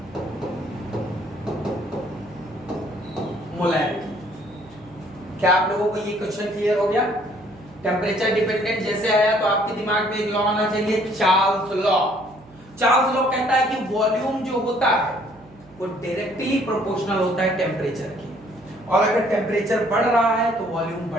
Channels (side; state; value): right; noise; hum, 25 dB below the sound